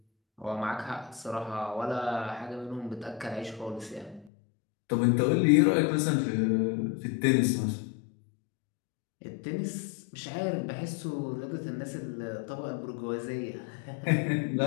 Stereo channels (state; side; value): drops out; right; at 4.3 s